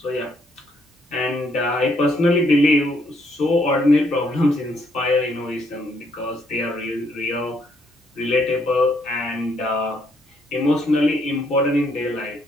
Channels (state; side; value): normal; both; correlation 0.71